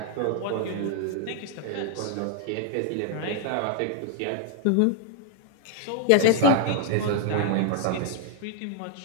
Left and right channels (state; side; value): different; both; correlation 0.00